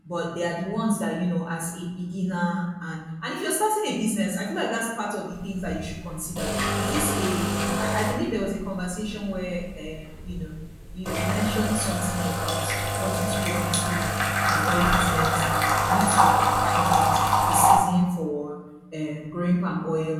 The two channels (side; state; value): both; identical; correlation 1.00